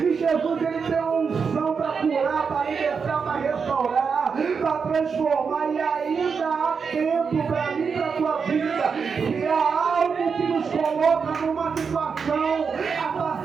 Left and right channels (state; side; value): quieter; left; 5.8 dB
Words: Jesus, Ele tem uma unção para curar, para libertar, para restaurar, para transformar. E ainda há tempo para mim, para a tua vida. Se há algo que nos coloca numa situação